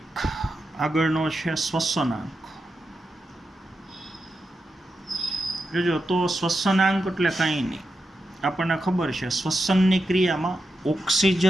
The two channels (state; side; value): normal; both; correlation 0.88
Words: આગળનો છે શ્વસનાંક. જોજો, તો શ્વસનાંક એટલે કાંઈ નહીં, આપણને ખબર છે શ્વસનની ક્રિયામાં